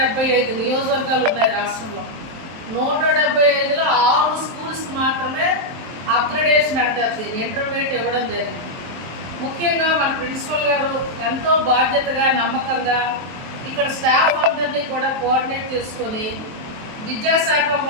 నియోజకవర్గాలు ఉన్నాయి రాష్ట్రంలో. 175లో 6 స్కూల్స్కి మాత్రమే అప్గ్రేడేషన్ అంటారు దీన్ని, ఇంటర్మీడియట్ ఇవ్వడం జరిగింది. ముఖ్యంగా మన ప్రిన్సిపల్ గారు ఎంతో బాధ్యతగా నమ్మకంగా ఇక్కడ స్టాఫ్ అందరినీ కూడా కోఆర్డినేట్ చేసుకొని విద్యాశాఖ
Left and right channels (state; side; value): late; left; 23 ms